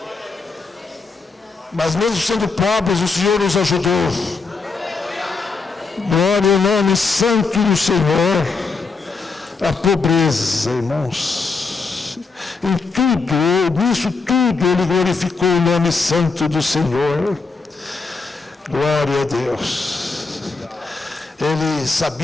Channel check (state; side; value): quieter; right; 4.3 dB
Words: Mas mesmo sendo pobres, o Senhor nos ajudou. Glória ao nome santo do Senhor. A pobreza, irmãos. Em tudo, nisso tudo, Ele glorificou o nome santo do Senhor. Glória a Deus. Ele